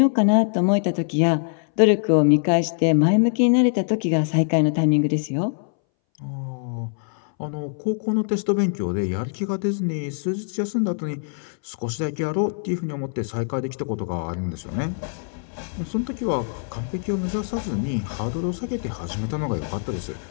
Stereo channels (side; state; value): right; silent; 61 dB below the other